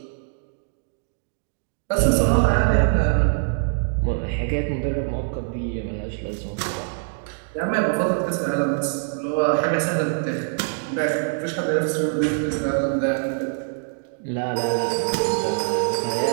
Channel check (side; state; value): left; silent; digital silence